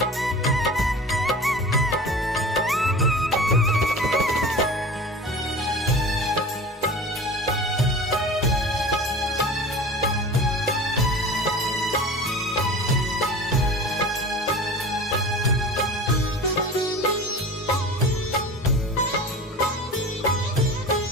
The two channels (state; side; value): normal; both; correlation 0.37